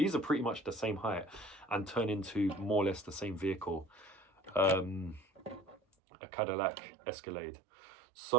are pretty much the same height and turn into more or less the same vehicle. A Cadillac Escalade.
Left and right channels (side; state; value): left; drops out; at 5.8 s